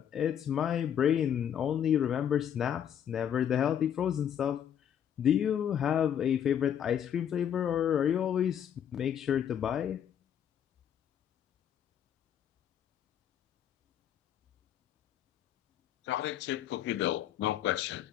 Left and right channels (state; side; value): quieter; right; 9.4 dB